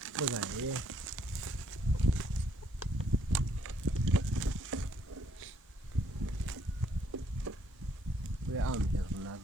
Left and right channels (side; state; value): both; normal; correlation 0.68